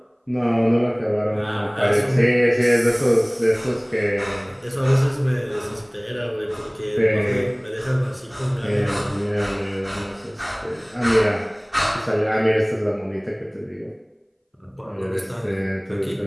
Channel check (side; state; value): both; identical; correlation 1.00